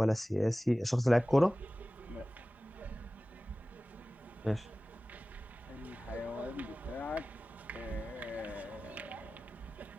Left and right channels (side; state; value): both; normal; correlation 0.97